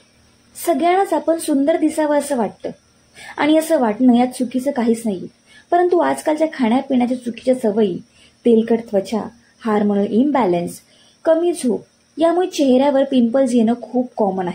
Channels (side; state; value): both; identical; correlation 1.00